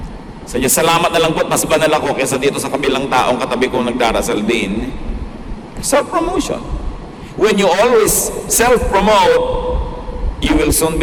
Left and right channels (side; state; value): both; identical; correlation 1.00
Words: So, salamat na lang po at mas banal ako kaysa dito sa kabilang taong katabi kong nagdarasal din. Self-promotion. When you always self-promote, you will soon be